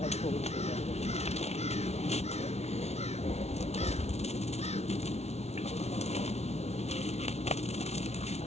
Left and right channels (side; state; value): right; late; 0.31 ms